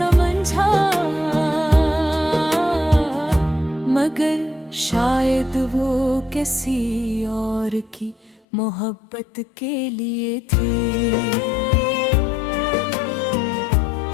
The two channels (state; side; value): drops out; right; at 8.4 s